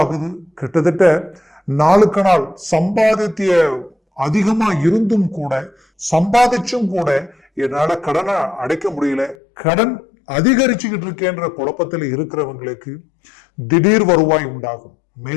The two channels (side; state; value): right; drops out; at 9.3 s